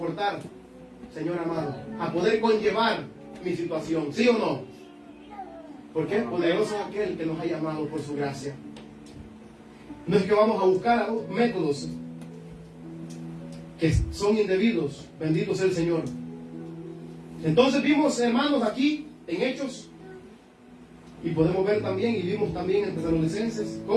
Señor amado, a poder conllevar mi situación. ¿Sí o no? Porque poderoso es aquel que nos ha llamado por su gracia. No es que vamos a buscar métodos que son indebidos. Bendito sea el Señor. Entonces vimos, hermanos, aquí en Hechos, y podemos ver también, y vimos también en Tesalonicenses,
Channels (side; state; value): both; identical; correlation 1.00